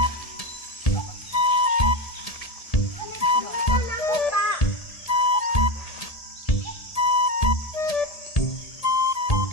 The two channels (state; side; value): late; right; 1.7 ms